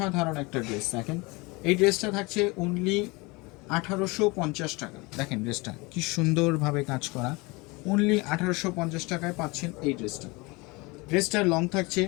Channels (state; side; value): quieter; right; 25.4 dB